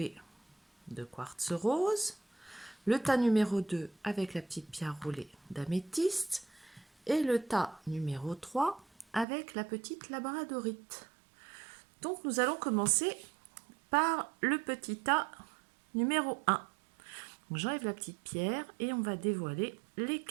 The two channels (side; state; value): left; drops out; at 9.2 s